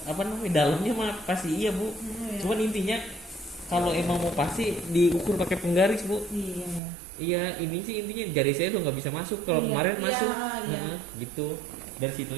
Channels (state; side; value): drops out; left; at 6.8 s